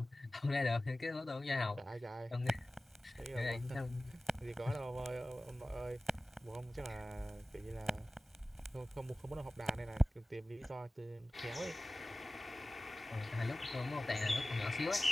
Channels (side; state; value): both; normal; correlation 0.97